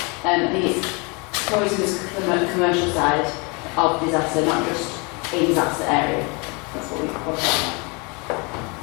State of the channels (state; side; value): quieter; right; 30.3 dB